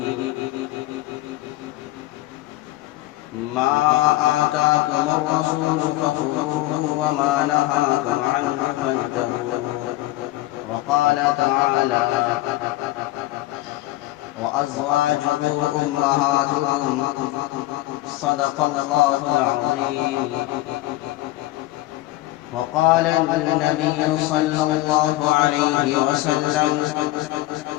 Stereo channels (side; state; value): right; quieter; 17.1 dB